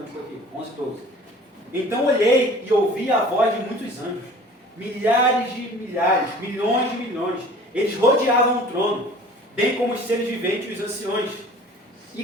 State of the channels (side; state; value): both; normal; correlation 0.47